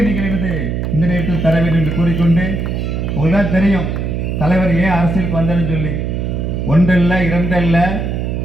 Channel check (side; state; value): right; noise; hum, 2 dB below the sound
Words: நீங்கள் இந்த நேரத்தில் தர வேண்டும் என்று கூறிக்கொண்டு, உங்களுக்கு தெரியும் தலைவர் ஏன் அரசியலுக்கு வந்தாருன்னு சொல்லி. ஒன்றல்ல இரண்டல்ல,